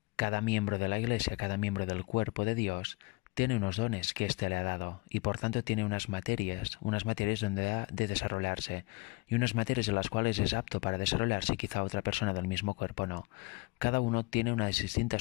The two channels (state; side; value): quieter; right; 25.3 dB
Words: cada miembro de la Iglesia, cada miembro del cuerpo de Dios, tiene unos dones que éste le ha dado y por tanto tiene unas materias donde ha de desarrollarse y unas materias en las cuales es apto para desarrollarse y quizá otra persona del mismo cuerpo no. Cada uno tiene unas